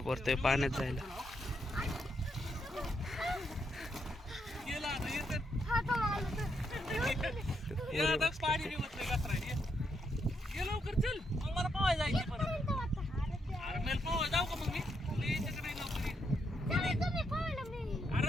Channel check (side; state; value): both; normal; correlation 0.79